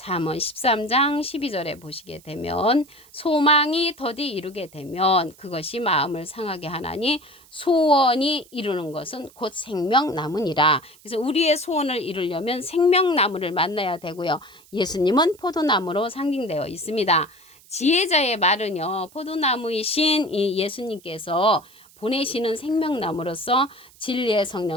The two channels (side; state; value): right; noise; hiss, 26 dB below the sound